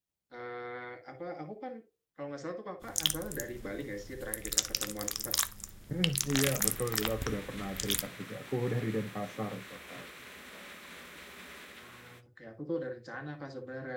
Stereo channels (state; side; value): identical; both; correlation 1.00